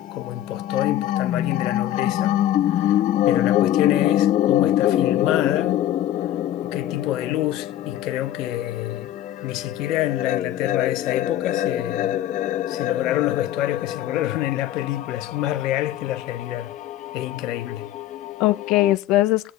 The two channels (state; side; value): quieter; right; 12.8 dB